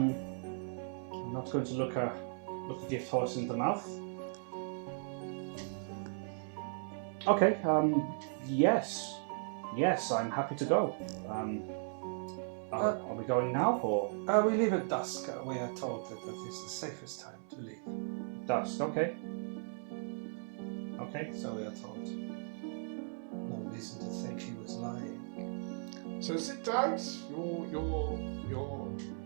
not going to look a gift horse in the mouth." Okay. Yes, I'm happy to go. Are we going now or We leave at dusk. We are told that is the safest time to leave. dusk? Okay. Okay. So we are told. No reason to think she was lying. So sit tight. Your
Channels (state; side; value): silent; left; 53 dB below the other